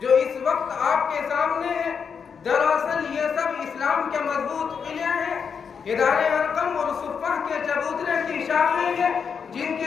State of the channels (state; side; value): quieter; right; 6.4 dB